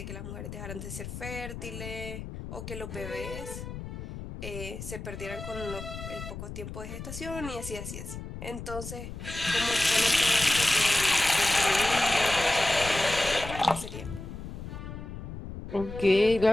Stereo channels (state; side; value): noise; left; rumble, 9 dB below the sound